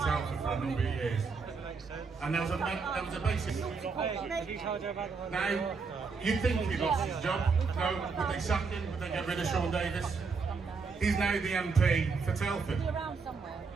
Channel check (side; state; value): left; quieter; 4.9 dB